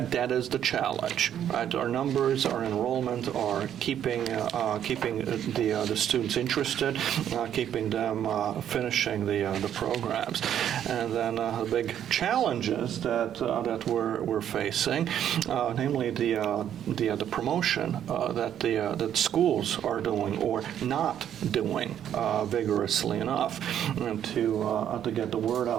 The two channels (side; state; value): left; quieter; 10.0 dB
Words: is the challenge, right? Our numbers, our enrollment are keeping the students interested, keeping them finishing the programs, and then the big challenges that we're facing, namely the promotion that schools are doing or not doing vigorously enough to get the word